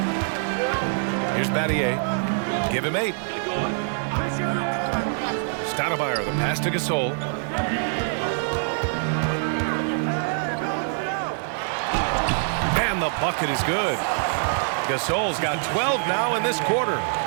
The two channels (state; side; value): silent; left; 62 dB below the other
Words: Here's Battier. Give him 8. Stoudemire, the pass to Gasol. And the bucket is good. Gasol's got 12 now in this quarter.